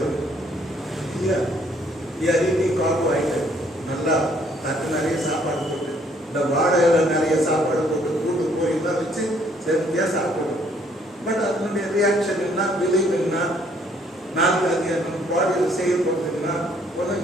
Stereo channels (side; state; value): both; normal; correlation 0.64